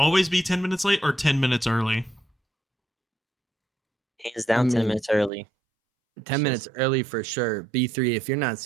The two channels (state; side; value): drops out; left; at 5.3 s